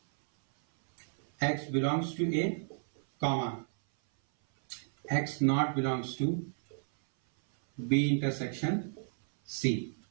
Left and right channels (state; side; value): silent; left; 57 dB below the other